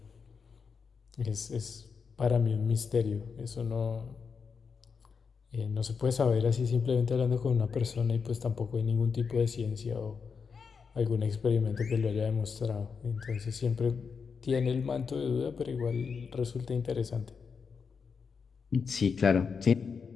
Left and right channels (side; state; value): right; quieter; 5.7 dB